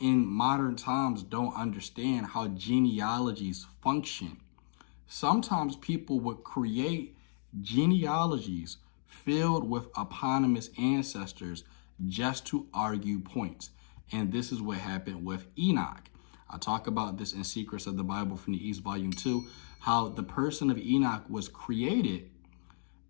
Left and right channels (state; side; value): silent; right; digital silence